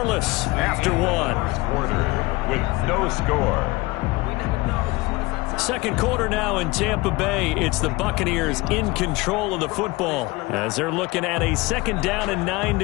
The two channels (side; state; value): right; quieter; 22.0 dB